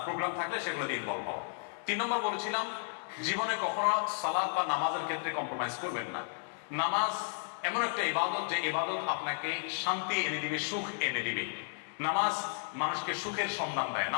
প্রোগ্রাম থাকলে সেগুলোতে ইনভলভ হওয়া। 3 নম্বর বলেছিলাম, জীবনে কখনো সালাত বা নামাজের ক্ষেত্রে কম্প্রোমাইজ করবেন না। নামাজ এমন একটা ইবাদত যে ইবাদত আপনাকে শান্তি এনে দিবে, সুখ এনে দিবে। নামাজ মানুষকে সুখের সন্ধান দেয়।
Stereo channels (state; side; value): silent; right; digital silence